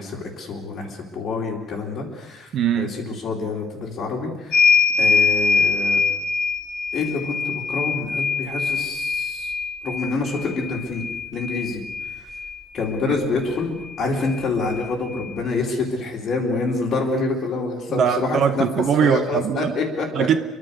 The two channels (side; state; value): both; normal; correlation 0.62